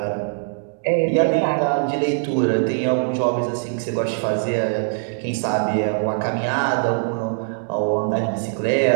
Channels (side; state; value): left; silent; digital silence